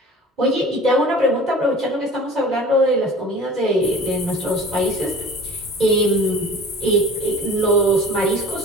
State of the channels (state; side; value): normal; both; correlation 0.43